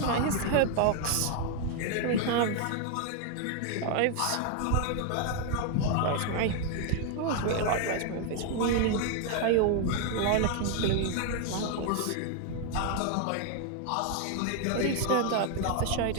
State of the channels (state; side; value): different; both; correlation 0.00